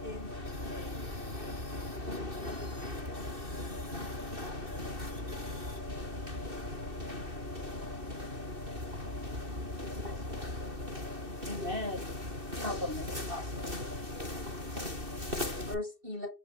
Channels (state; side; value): late; left; 2.6 ms